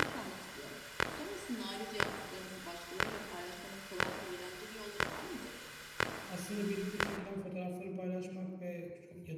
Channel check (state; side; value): identical; both; correlation 1.00